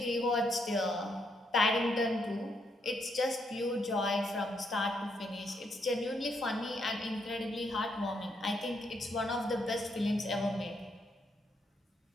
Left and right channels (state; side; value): normal; both; correlation 0.76